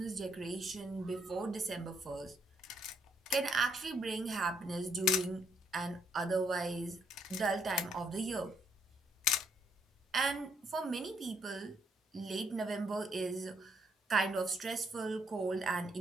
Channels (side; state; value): both; normal; correlation 0.71